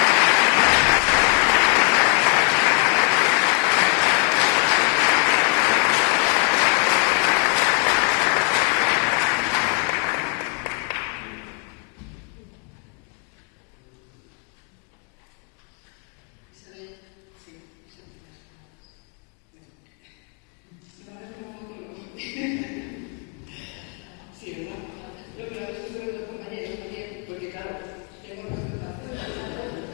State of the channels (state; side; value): quieter; right; 37.6 dB